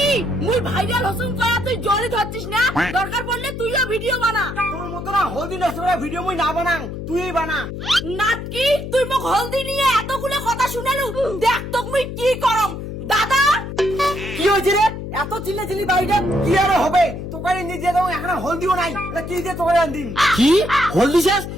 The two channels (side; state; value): left; noise; hum, 8 dB below the sound